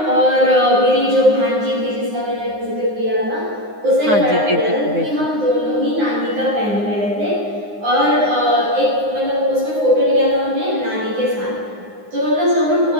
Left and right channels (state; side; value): late; left; 9.6 ms